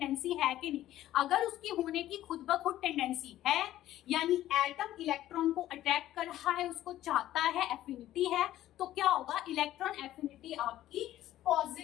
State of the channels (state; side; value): quieter; right; 13.7 dB